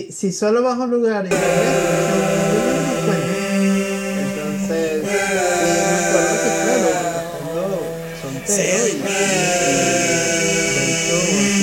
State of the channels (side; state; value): both; identical; correlation 1.00